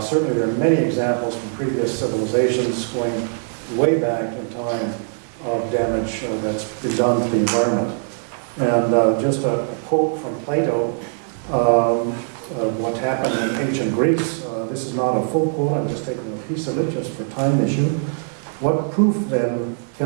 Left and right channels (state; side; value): silent; left; digital silence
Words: Certainly there are many examples from previous civilizations going way back in time of damage that's been done to the environment. And just a quote from Plato, what happened in ancient Greece. This is not a full quote, I'm just taking a piece of it just for time issue. What proof then